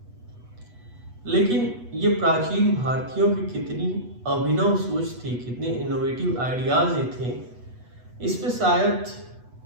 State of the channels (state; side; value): late; left; 8.2 ms